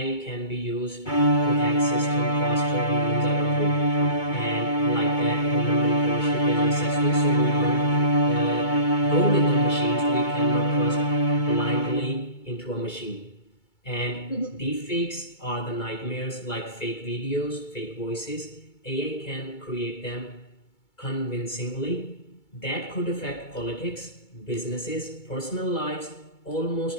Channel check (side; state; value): right; late; 2.2 ms